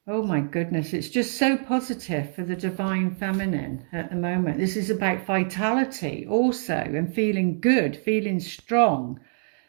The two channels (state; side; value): silent; left; digital silence